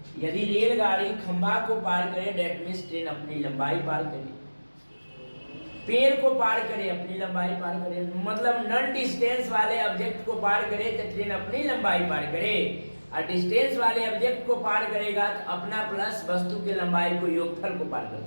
यदि रेलगाड़ी खंभा को पार करे डेट मीन्स ट्रेन अपनी लंबाई पार करे, पेड़ को पार करे अपनी लंबाई पार करे, मतलब नॉन डिस्टेंस वाले ऑब्जेक्ट को पार करे तो ट्रेन अपनी लंबाई पार करे, और डिस्टेंस वाले ऑब्जेक्ट को पार करेगा तो अपना प्लस वस्तु की लंबाई को योगफल को पार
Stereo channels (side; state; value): both; inverted; correlation -1.00